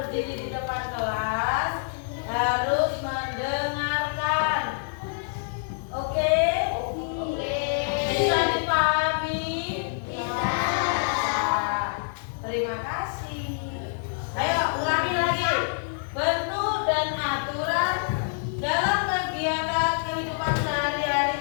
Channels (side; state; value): right; silent; 57 dB below the other